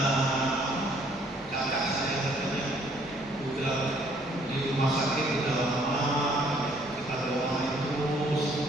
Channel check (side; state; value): both; normal; correlation 0.63